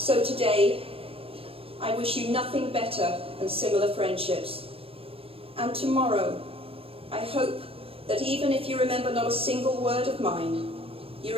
today, I wish you nothing better than similar friendships. And tomorrow, I hope that even if you remember not a single word of mine, you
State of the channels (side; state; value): left; late; 0.28 ms